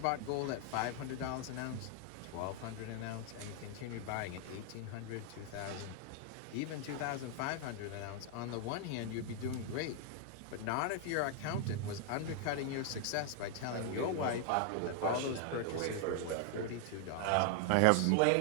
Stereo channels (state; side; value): different; both; correlation 0.00